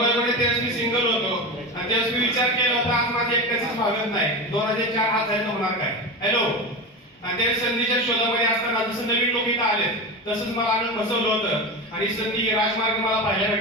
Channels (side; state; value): both; normal; correlation 0.23